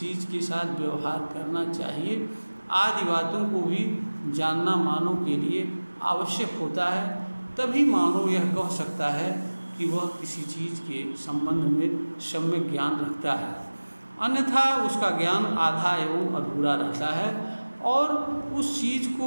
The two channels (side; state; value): both; inverted; correlation -1.00